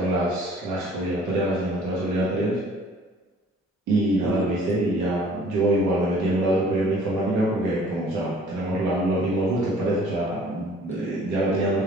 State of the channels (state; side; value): normal; both; correlation 0.53